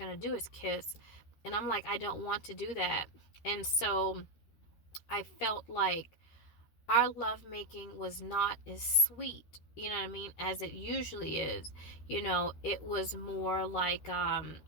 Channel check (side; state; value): right; late; 13 ms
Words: do is kiss. And I'm like, I don't want to do that. And so I felt like our lovemaking was not as sweet, you know what I mean, as it usually is. It was more like